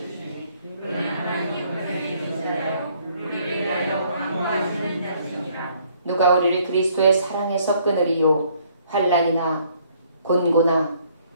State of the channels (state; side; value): inverted; both; correlation -0.64